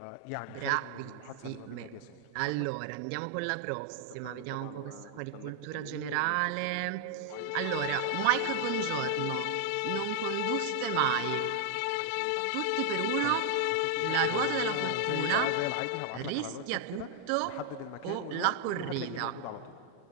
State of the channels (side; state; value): both; different; correlation 0.00